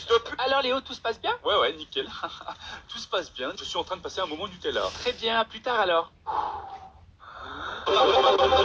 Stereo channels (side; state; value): both; identical; correlation 1.00